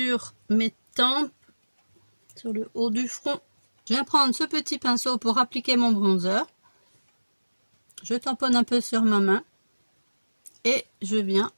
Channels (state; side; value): inverted; both; correlation -1.00